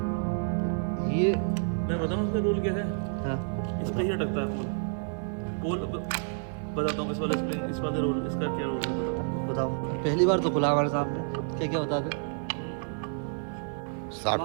ये मैं बताऊँ उसका रोल क्या है? हाँ, इस पर ही अटकता है पोल बताता हूँ। इस वाले स्प्रिंग, इस वाले रोल, इसका क्या रोल है बताओ। पहली बार तो खुला हमारे सामने, क्या क्या बता दे।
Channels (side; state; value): left; silent; 58 dB below the other